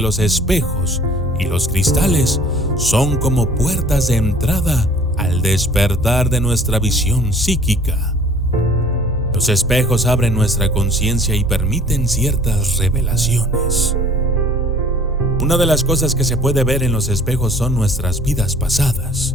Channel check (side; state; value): both; normal; correlation 0.52